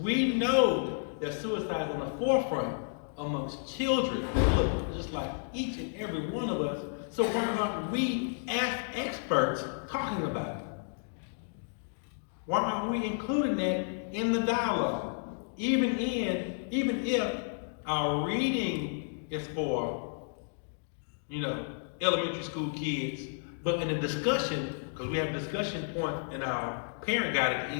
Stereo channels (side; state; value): right; silent; digital silence